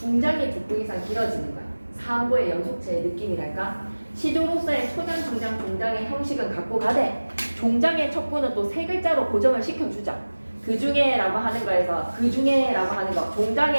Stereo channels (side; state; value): both; inverted; correlation -1.00